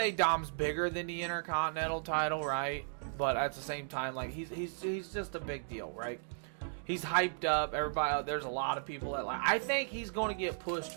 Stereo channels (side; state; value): left; silent; digital silence